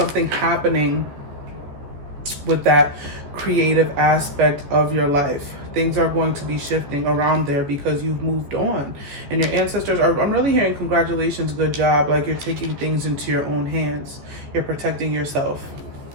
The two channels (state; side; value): late; left; 14 ms